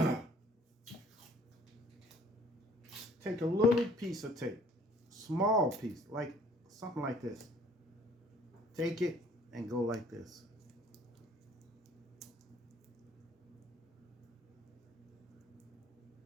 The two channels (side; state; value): both; normal; correlation 0.57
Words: take a little piece of tape, small piece, like something like this. Take it and go like this.